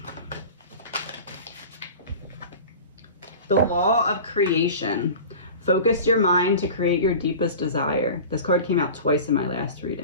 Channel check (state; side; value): inverted; both; correlation -0.36